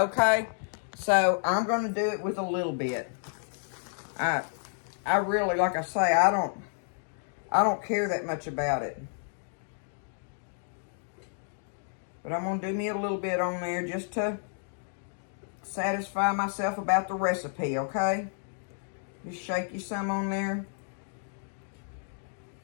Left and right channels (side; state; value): right; silent; digital silence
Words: So I'm going to do it with a little bit. I really, like I say, I don't care that much about it. But I'm going to do me a little bit on there just to satisfy myself about the recipe, okay? Just shake you some on there.